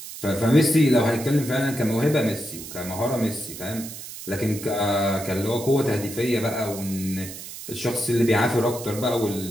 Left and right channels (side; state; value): right; noise; hiss, 12 dB below the sound